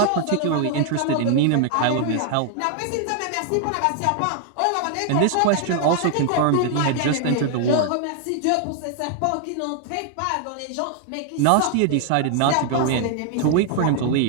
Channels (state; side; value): different; both; correlation 0.00